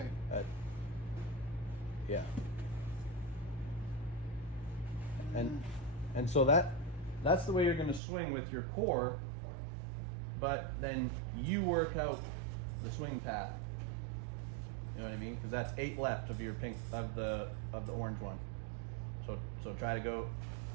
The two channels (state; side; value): drops out; left; at 8.0 s